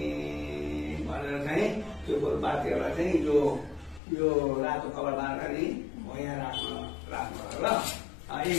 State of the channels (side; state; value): right; drops out; at 4.0 s